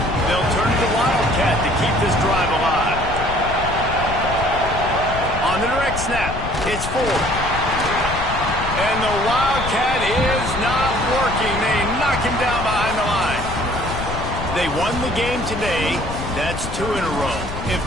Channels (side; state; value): left; noise; rumble, 7 dB below the sound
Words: They'll turn to the Wildcat to keep this drive alive. On the direct snap, it's Ford. And the Wildcat is not working. They knock him down behind the line. They won the game today. That's 2 in a row. If